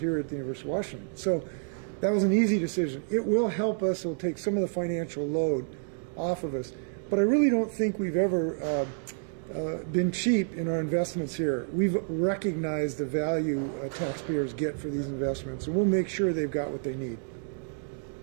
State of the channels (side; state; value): left; silent; digital silence